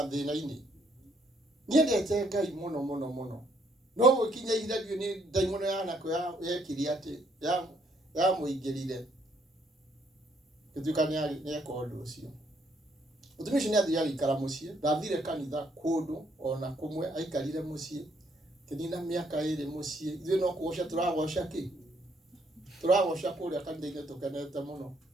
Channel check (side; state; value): both; normal; correlation 0.69